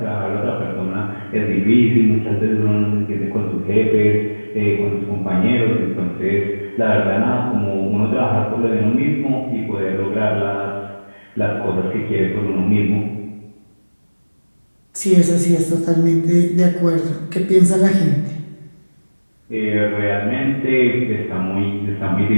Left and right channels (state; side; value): inverted; both; correlation -1.00